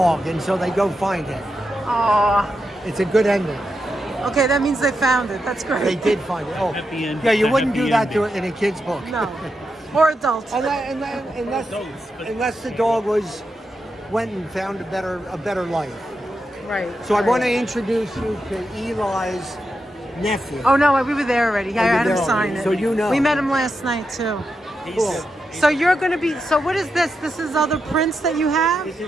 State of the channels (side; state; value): both; normal; correlation 0.86